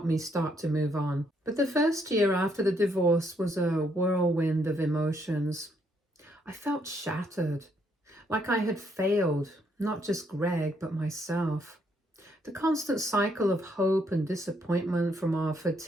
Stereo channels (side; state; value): both; normal; correlation 0.72